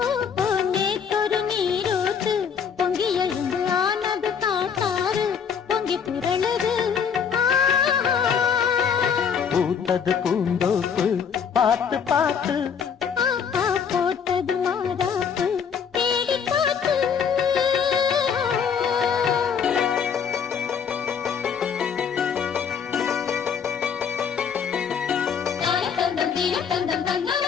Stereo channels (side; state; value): right; quieter; 7.0 dB